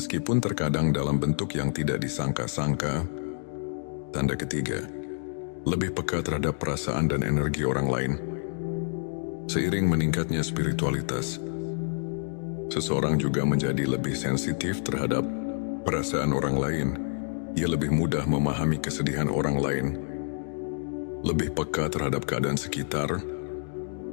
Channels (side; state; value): right; silent; digital silence